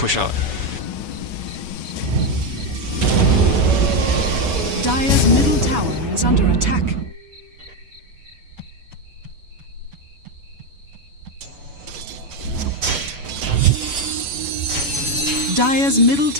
out. Dire's middle tower is under attack. Dire's middle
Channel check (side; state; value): left; late; 7.1 ms